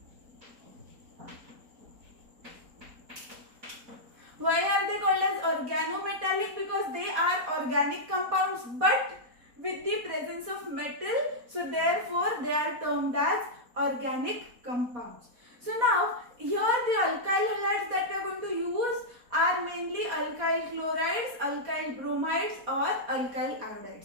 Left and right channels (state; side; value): late; left; 4.1 ms